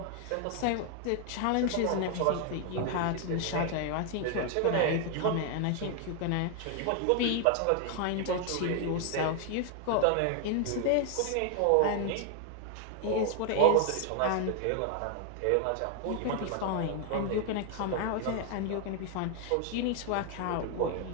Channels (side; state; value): both; different; correlation 0.00